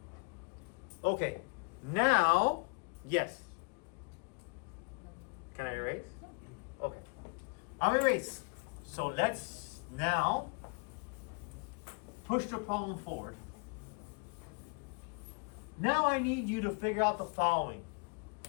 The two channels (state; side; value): quieter; right; 34.5 dB